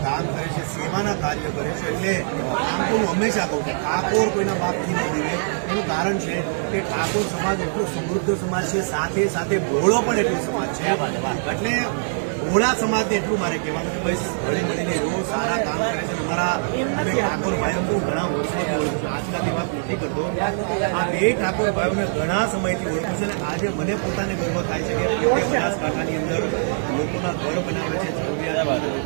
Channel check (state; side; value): silent; left; digital silence